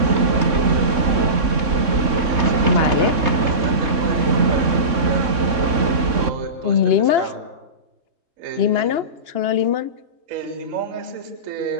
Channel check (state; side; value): late; left; 3.6 ms